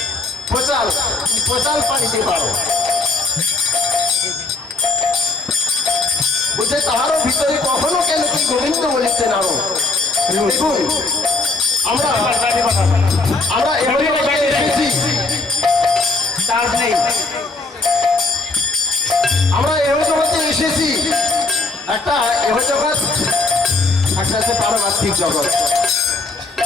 প্রচার প্রচার পানিতে পারো বুঝে, তাহারও ভিতরে কখনো কেন কি গোবিন্দ বলিতে নাও। দেখুন, আমরা এমন এসেছি কাজ নেই। আমরা এহ জগতে এসেছি, একটা এহ জগৎ, একটা আছে পারমার্থিক জগৎ,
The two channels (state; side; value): quieter; right; 3.4 dB